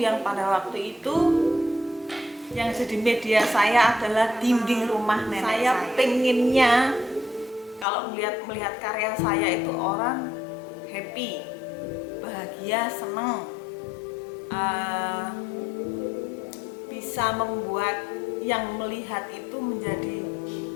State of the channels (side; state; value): right; drops out; at 7.9 s